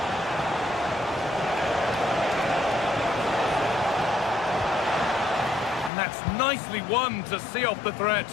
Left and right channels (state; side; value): drops out; right; at 5.9 s